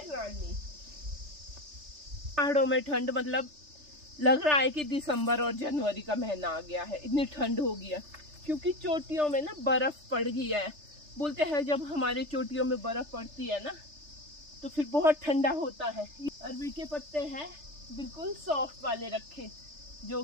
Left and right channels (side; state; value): left; late; 3.3 ms